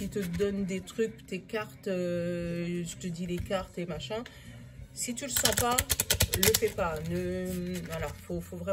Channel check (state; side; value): identical; both; correlation 1.00